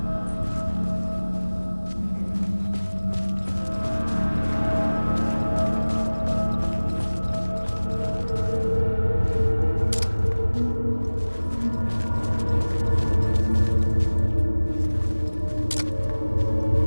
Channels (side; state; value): both; inverted; correlation -1.00